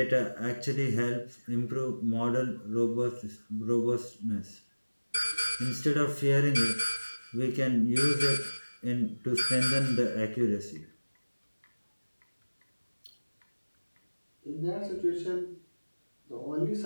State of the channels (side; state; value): both; inverted; correlation -1.00